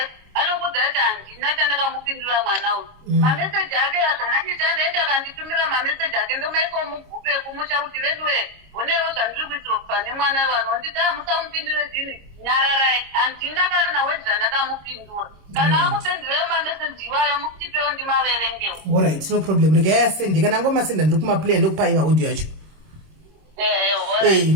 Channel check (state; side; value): late; left; 26 ms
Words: anokudza kuti handina chandakamupindura mwana uyu. Mameseji ake azvanachita ndaiti akanditumira mameseji ake ndomaisa mugupe kumusha kuti veduwe onewo zvandiri kuitira pane mwana vanonditi musamupindure dini nyararai. Handina kana wedi zvandakamupindura. Kana akupindurayo mameseji iwayo mutipewo ndimaverengewo. Alright, no problem. Regai asende kana ngomasenda ndiri kumaplay ndokupai audio yacho.